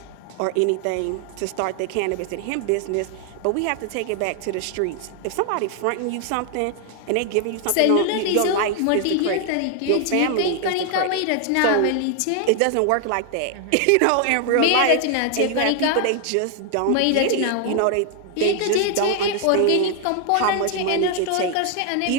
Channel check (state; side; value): different; both; correlation 0.00